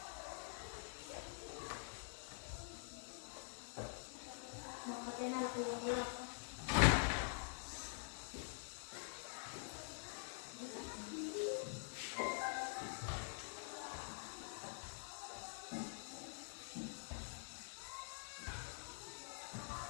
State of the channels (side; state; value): right; silent; digital silence